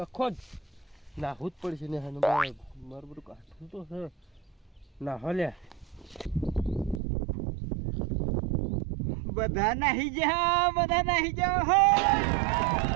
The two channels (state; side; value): drops out; left; at 7.0 s